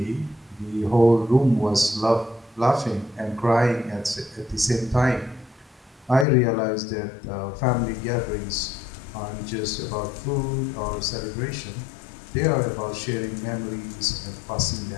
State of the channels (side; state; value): right; drops out; at 6.2 s